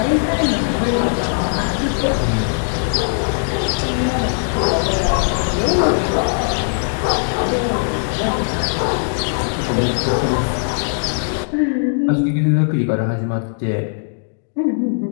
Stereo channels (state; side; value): silent; right; digital silence